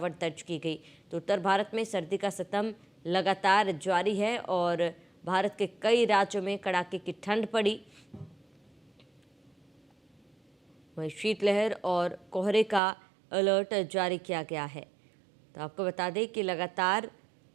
दर्ज की गई। तो उत्तर भारत में सर्दी का सितम लगातार जारी है और भारत के कई राज्यों में कड़ाके की ठंड पड़ी। वहीं शीतलहर और कोहरे का अलर्ट जारी किया गया है। तो आपको बता दें कि लगातार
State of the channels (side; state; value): left; drops out; at 12.8 s